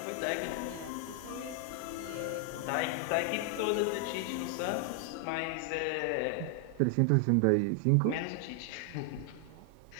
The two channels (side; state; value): both; different; correlation 0.00